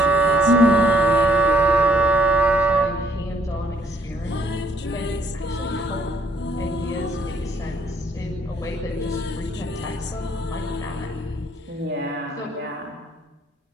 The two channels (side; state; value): both; normal; correlation 0.66